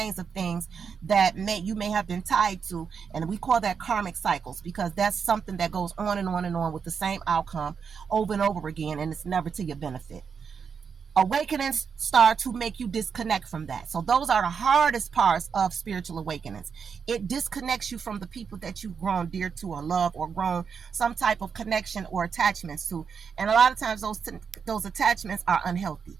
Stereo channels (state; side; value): quieter; left; 6.3 dB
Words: of things that you may have been tied to. And we call that karmic cycles, because that's something that goes on and on and on with the same outcome over and over again, and it's never to your benefit. Awakenings start to make you disconnect from that. So those are the hardest parts of spiritual awakenings. It disconnects you from the people that you've grown dear to or love or grown some type of connection or attachments to. And a lot of times those attachments are unhealthy